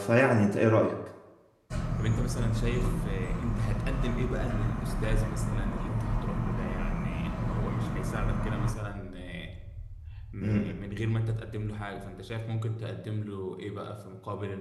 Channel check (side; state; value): both; identical; correlation 1.00